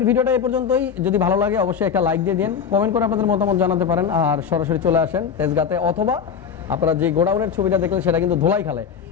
ভিডিওটা এই পর্যন্তই। যদি ভালো লাগে অবশ্যই একটা লাইক দিয়ে দিন, কমেন্ট করে আপনাদের মতামত জানাতে পারেন, আর সরাসরি চলে আসেন তেজগাঁতে, অথবা আপনারা যে গোডাউনের ছবিটা দেখলেন সেটা কিন্তু ধোলাইখালে।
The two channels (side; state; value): right; quieter; 7.1 dB